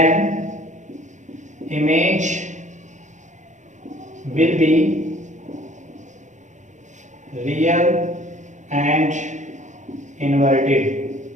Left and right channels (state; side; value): late; left; 0.35 ms